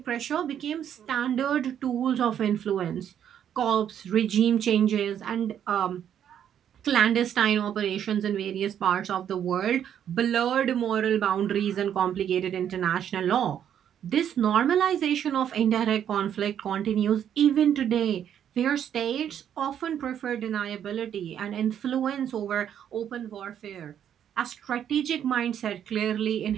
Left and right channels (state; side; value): quieter; left; 9.5 dB